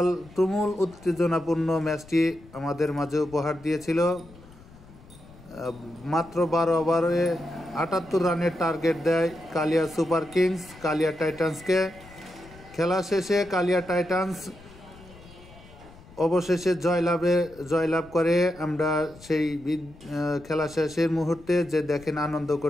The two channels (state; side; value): noise; left; rumble, 22 dB below the sound